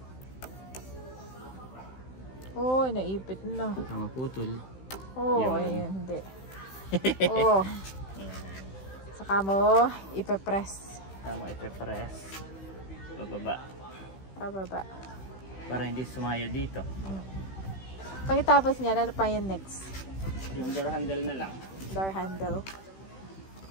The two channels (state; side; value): late; right; 16 ms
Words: Uy, naipit na. Tama putol. Oh, ayun, hindi. Oh. Saka mo, ipe-press. Tama, ipe-press. Pababa. Para hindi sumaya dito. Pagkatapos niya, ano pa yung next? Yung door handle na lang. Door handle.